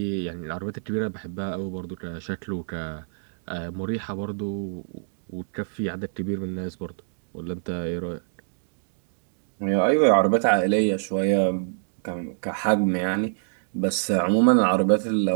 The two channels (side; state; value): left; silent; digital silence